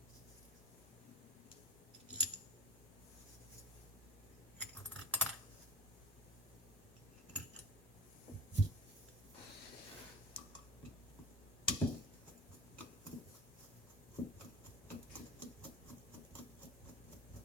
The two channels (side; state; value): both; normal; correlation 0.34